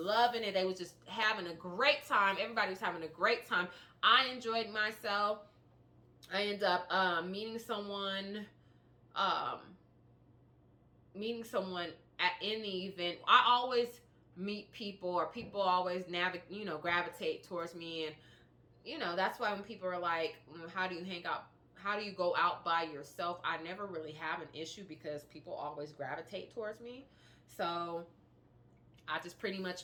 it. They was just having a great time. Everybody was having a great time. I enjoyed myself. I ended up meeting someone in the event. I always meet people, or people always gravitate towards me, and that's why when people are like, how do you hang out? How do you go out by yourself? I never really have an issue because people always gravitate towards me. So I just pretty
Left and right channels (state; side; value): identical; both; correlation 1.00